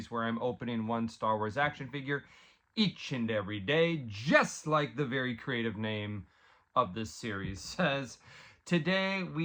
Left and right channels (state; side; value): identical; both; correlation 1.00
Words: where I'm opening one Star Wars action figure each and every day, just like the very creative name of this series says. Today